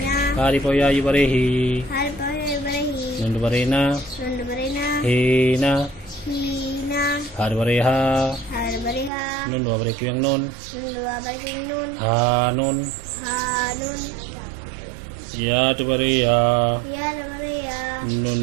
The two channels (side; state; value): left; drops out; at 9.1 s